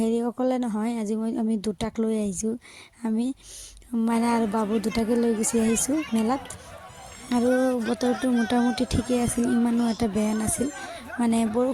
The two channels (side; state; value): both; identical; correlation 1.00